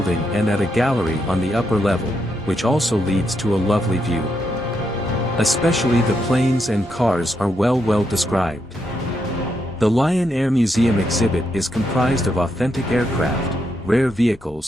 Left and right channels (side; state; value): both; normal; correlation 0.80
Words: and at a gallery on the upper level, which also leads to a lovely view. Especially the planes and cars are well described. The Lyon Air Museum exhibit is comprised of authentic aircraft, rare